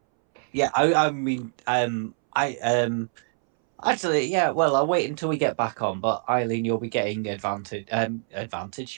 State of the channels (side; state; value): left; silent; 62 dB below the other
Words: yeah, I mean, actually, yeah. Well, I'll wait until we get back on. But Eileen, you'll be getting advantage. Advantage.